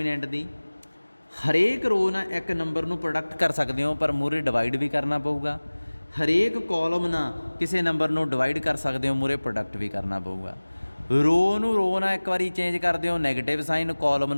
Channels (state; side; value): inverted; both; correlation -1.00